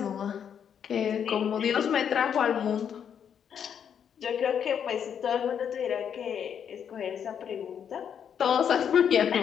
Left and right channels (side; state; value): right; quieter; 8.2 dB